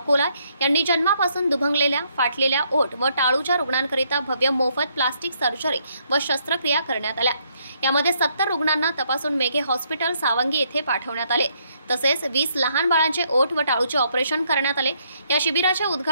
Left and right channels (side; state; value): both; inverted; correlation -0.71